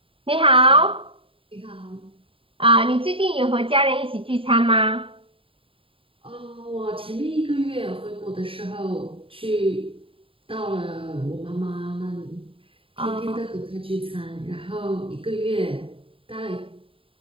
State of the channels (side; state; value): left; late; 0.26 ms